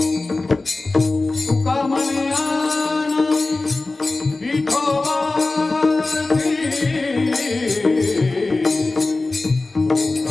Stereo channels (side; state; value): right; quieter; 3.3 dB